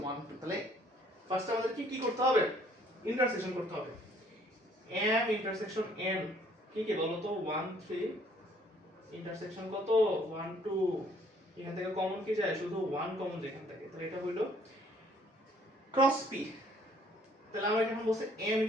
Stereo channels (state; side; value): normal; both; correlation 0.61